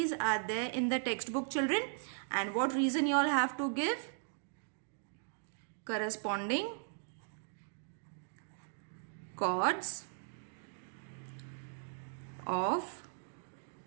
are there in the textbook, children. And what reason you all have to give? Corresponding chords of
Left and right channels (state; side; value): silent; left; digital silence